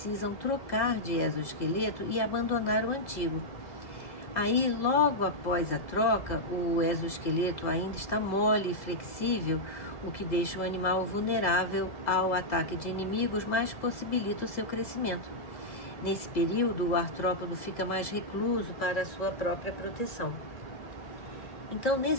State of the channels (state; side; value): late; right; 2.0 ms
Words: trocar de exoesqueleto e abandonar o antigo. Aí, logo após a troca, o exoesqueleto ainda está mole e flexível, o que deixa o animal vulnerável ao ataque de inimigos, mas possibilita o seu crescimento. Nesse período, o artrópodo fica mais recluso para a sua própria proteção. Então,